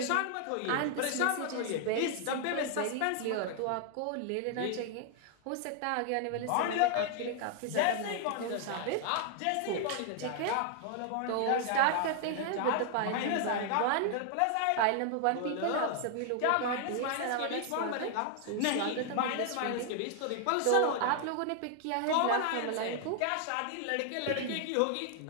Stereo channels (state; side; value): different; both; correlation 0.00